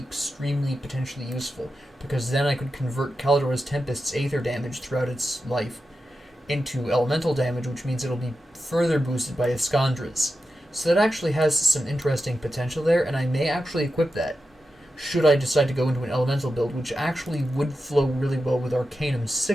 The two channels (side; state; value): both; normal; correlation 0.90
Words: potentially useful, because then I could convert Caladora's Tempest's aether damage throughout its life into elemental damage, which means it'll be further boosted by Iskandra's. So that actually has some interesting potential there, and I may actually equip that, should I decide to go into an elemental build, which actually would flow really well with Arcanum's